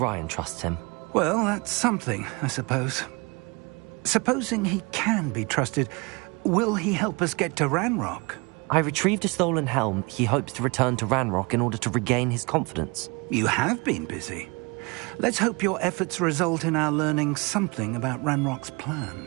trusts him. Well, that's something, I suppose. Supposing he can be trusted, will he help us get to Ranrock? I retrieved a stolen helm. He hopes to return to Ranrock in order to regain his confidence. You have been busy. Let's hope your efforts result in our learning something about Ranrock's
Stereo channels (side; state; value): left; quieter; 28.2 dB